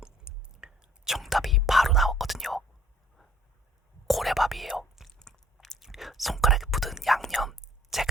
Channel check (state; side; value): normal; both; correlation 0.57